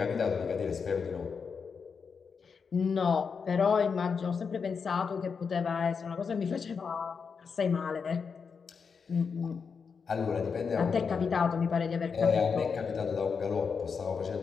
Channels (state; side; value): quieter; right; 5.8 dB